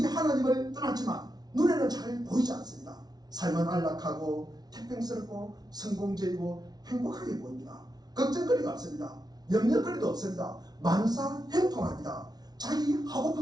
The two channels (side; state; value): left; late; 0.19 ms